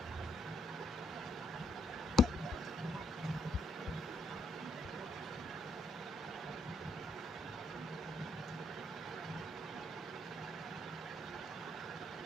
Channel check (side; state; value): both; normal; correlation 0.72